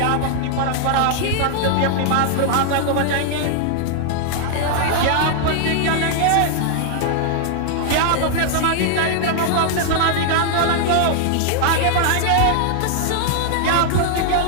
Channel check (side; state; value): both; different; correlation 0.00